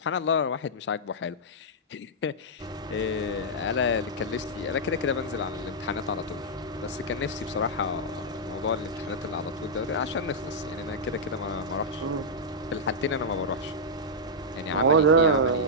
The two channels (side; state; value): both; normal; correlation -0.08